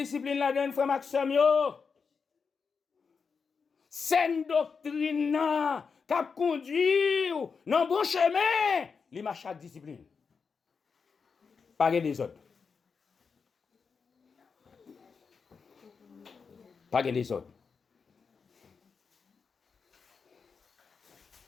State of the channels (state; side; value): quieter; right; 5.5 dB